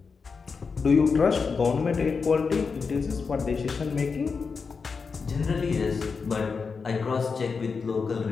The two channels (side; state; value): right; quieter; 5.1 dB